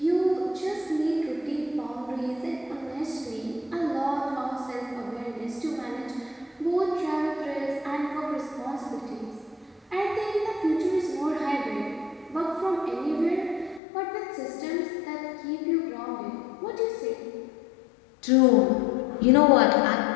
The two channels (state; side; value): drops out; right; at 13.8 s